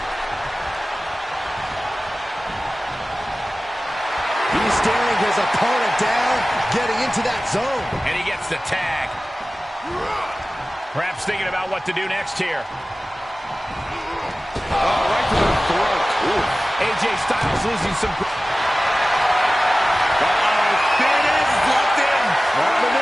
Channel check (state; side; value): normal; both; correlation 0.97